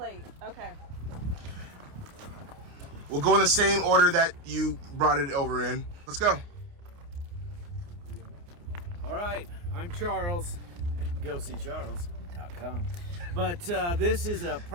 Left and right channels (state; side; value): late; left; 29 ms